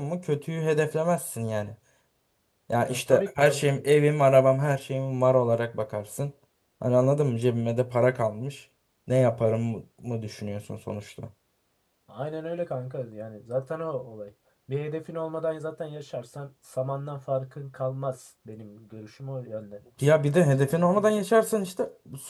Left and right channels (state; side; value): identical; both; correlation 1.00